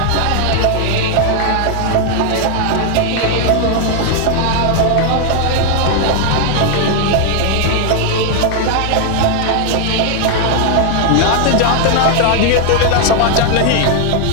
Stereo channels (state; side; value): different; both; correlation 0.00